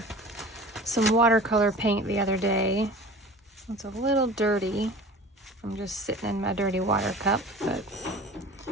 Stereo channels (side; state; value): both; normal; correlation 0.41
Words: some watercolor paint the other day. It's a little dirty from just sitting in my dirty water cup, but